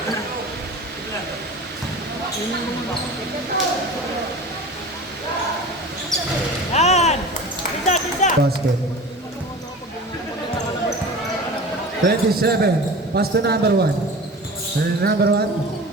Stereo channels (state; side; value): normal; both; correlation 0.36